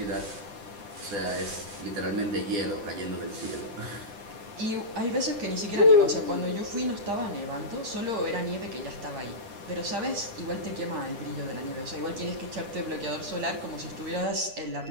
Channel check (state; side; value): late; left; 10 ms